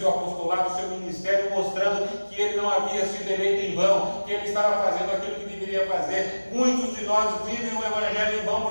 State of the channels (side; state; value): both; inverted; correlation -1.00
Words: apostolado, o seu ministério, mostrando que ele não havia sido eleito em vão, que ele estava fazendo aquilo que deveria fazer. Muitos de nós vivem o evangelho em vão